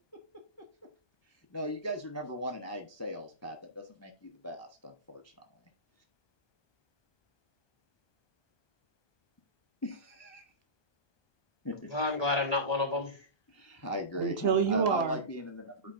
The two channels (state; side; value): late; right; 1.2 ms